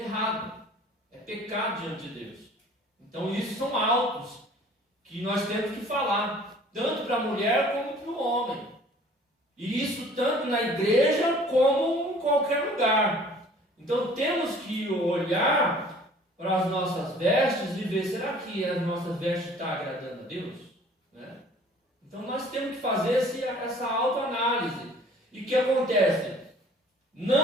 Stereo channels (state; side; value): normal; both; correlation 0.51